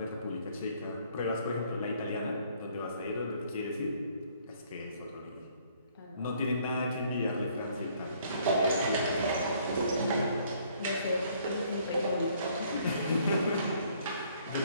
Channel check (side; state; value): both; inverted; correlation -0.63